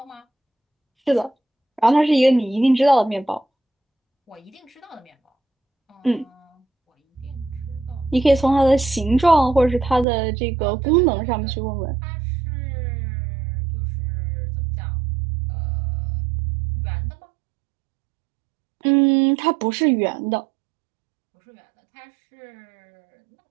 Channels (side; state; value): left; drops out; at 10.1 s